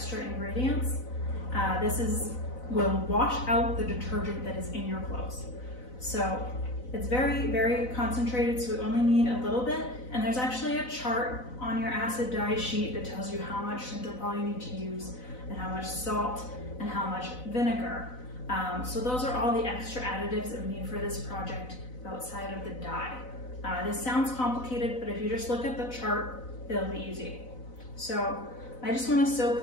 ingredients. This will wash out the detergent that is in your clothes. So it's very, very concentrated, so we only need a little bit. And there's actually a chart on your acid dye sheet that tells you how much Synthepol you need to use, and how much salt, and how much vinegar. So those are all the extra additives that we need for this project outside of the dye. This sounds complicated, but if you just look at the chart, it'll be easy. So I just want to soak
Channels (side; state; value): right; late; 4.0 ms